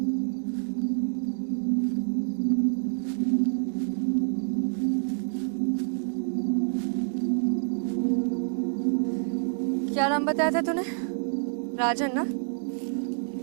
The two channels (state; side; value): silent; left; 60 dB below the other